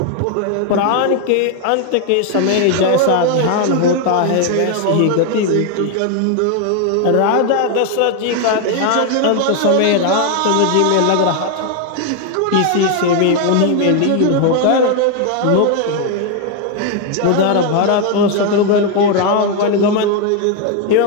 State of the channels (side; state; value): both; different; correlation 0.01